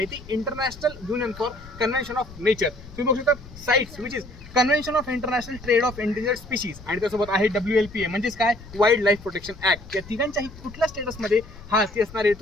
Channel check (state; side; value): noise; left; rumble, 17 dB below the sound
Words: ती international union for convention of nature. तुम्ही बघू शकता sites which is convention of international trade off endangered species आणि त्यासोबत आहे WLPA म्हणजेच काय, वाईल्ड लाईफ प्रोटेक्शन ऍक्ट. या तिघांच्याही कुठल्या स्टेटसमध्ये हा हत्ती असणार आहे